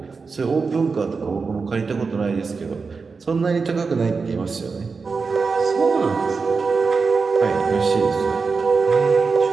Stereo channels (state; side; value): quieter; left; 4.7 dB